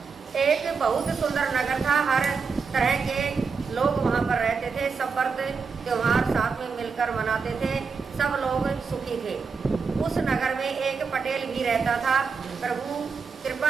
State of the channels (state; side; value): quieter; left; 5.3 dB